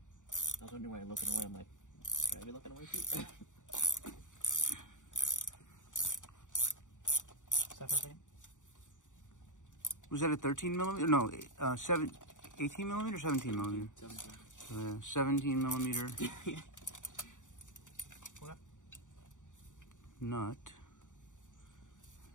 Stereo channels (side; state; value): right; late; 0.86 ms